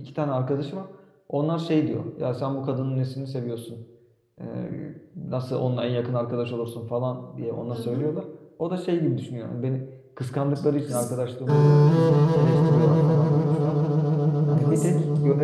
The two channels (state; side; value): identical; both; correlation 1.00